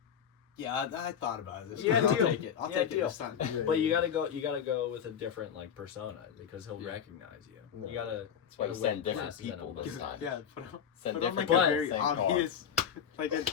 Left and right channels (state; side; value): quieter; right; 8.2 dB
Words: yeah, I thought about it. This Yeah, time. I'll deal. take it. I'll Yeah, take deal. it this time. But you gotta go with a different like persona because he'll Yeah. recognize you. No. You gotta. That's why you gotta send wear different glasses and people a this mustache. time. Yeah, put on, Send put on like different a very people, same car. obvious, like an